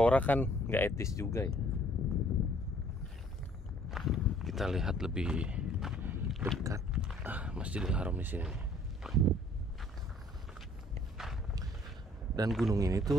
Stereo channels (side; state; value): both; normal; correlation 0.59